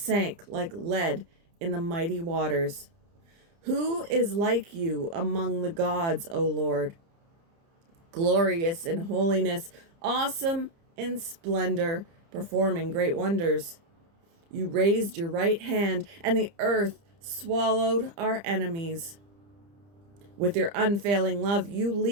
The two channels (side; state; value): left; late; 30 ms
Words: like lead in the mighty waters. Who is like you among the gods, O Lord? Glorious in holiness, awesome in splendor, performing great wonders. You raised your right hand, and the earth swallowed our enemies. With your unfailing love, you